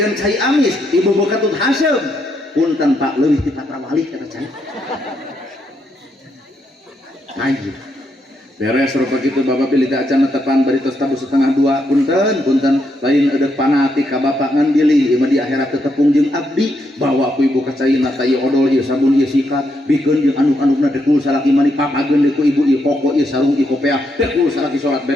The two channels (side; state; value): both; normal; correlation 0.78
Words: cai amis ibu bekatut hasem punten Pak leuwih ti patrawali eta cai. Anjir. Beres rupa kitu bapak pilih teh acan tepan bari tos tabu setengah 2 punten lain eudeuh panati ka bapak ngan bilih ieu di akhirat teu tepung jeung abdi bawa ku ibu ka caina tah ieu odol ieu sabun ieu sikat bikeun jeung anu-anuna dekul salaki mani papageun deui ku ibu ieu koko ieu sarung ieu kopiah dekul salaki salat